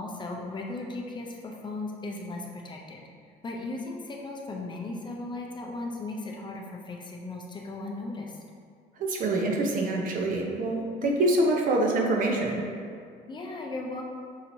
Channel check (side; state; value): both; normal; correlation 0.40